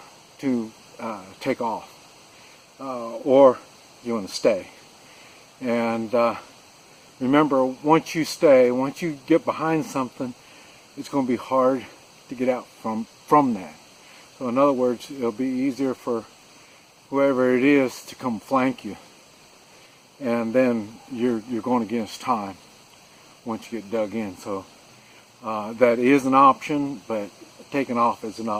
to take off, or you want to stay. And remember, once you get behind something, it's going to be hard to get out from that. So in other words, it'll be easier for whoever it is to come flank you, and then you're going against time once you get dug in. So that is an option, but taking off is an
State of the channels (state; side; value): identical; both; correlation 1.00